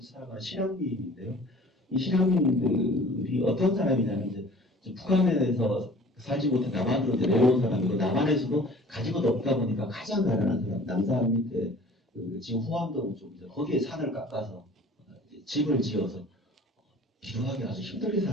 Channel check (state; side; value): normal; both; correlation 0.48